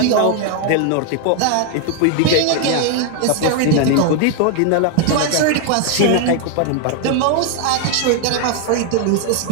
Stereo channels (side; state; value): both; different; correlation 0.00